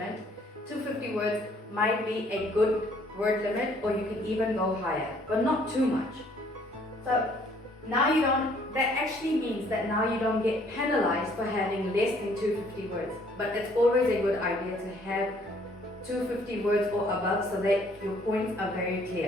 250 words might be a good word limit, or you can even go higher, but not too much. So now that actually means that now you don't get penalized for having less than 250 words. But it's always a good idea to have 250 words or above so that your points are very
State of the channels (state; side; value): normal; both; correlation 0.61